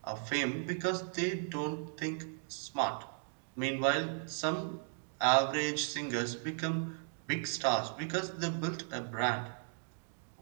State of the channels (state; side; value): silent; left; 54 dB below the other